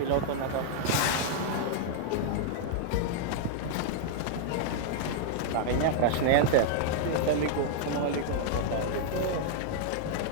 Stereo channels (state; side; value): different; both; correlation 0.00